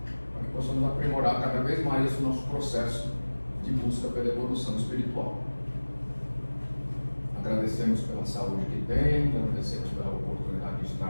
para que possamos aprimorar cada vez mais esse nosso processo de busca pela evolução espiritual. Agradecemos pela saúde que temos, agradecemos pela oportunidade de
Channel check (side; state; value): both; inverted; correlation -1.00